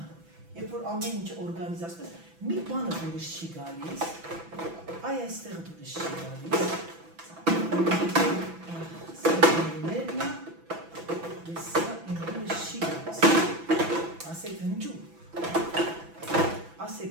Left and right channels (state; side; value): late; left; 6.0 ms